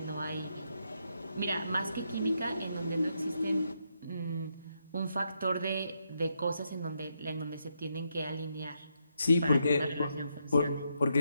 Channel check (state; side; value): inverted; both; correlation -0.80